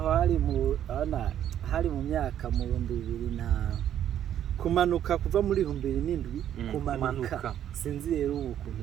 hari mu myaka mu 2000 na kumanuka kuva muri 2007 kumanuka sinzi rero ukuntu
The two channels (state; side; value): quieter; left; 10.6 dB